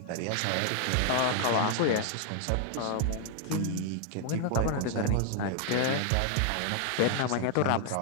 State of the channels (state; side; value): different; both; correlation 0.00